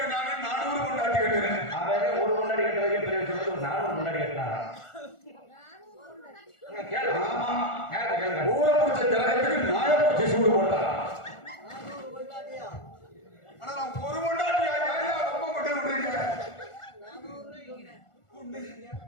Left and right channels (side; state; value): right; late; 1.4 ms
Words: 400 கொண்டாட்டி கட்டுறேன். அவன் ஒரு கொண்டாடி கட்டுறதுக்கு பெரிய சொல்றது 400 கொண்டாடி கட்டினாங்க. ஊரை முடிச்ச ஜனத்துக்கு நாயப்பூச்சி சூடு போட்டா. ஆனா நான் ஒரு கொண்டாட்டி ரொம்ப கொண்டு விடுறீங்க.